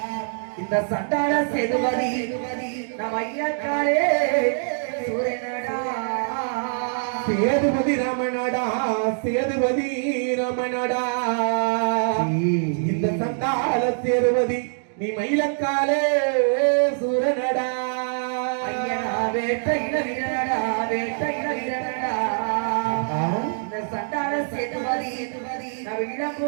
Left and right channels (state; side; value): silent; left; digital silence